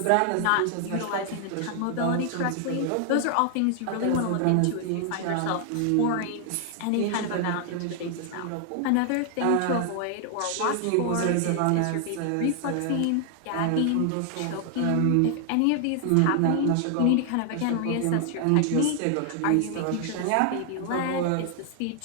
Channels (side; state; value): both; different; correlation 0.00